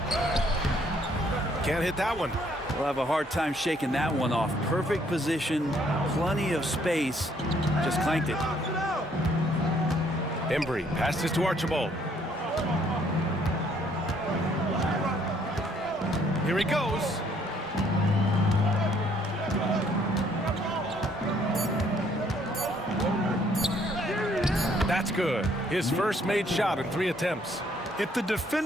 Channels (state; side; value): normal; both; correlation 0.65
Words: Can't hit that one. We'll have a hard time shaking that one off. Perfect position, plenty of space. Just clanked it. Embry passes to Archibald. Here he goes. That's good. His first made shot in 3 attempts. If the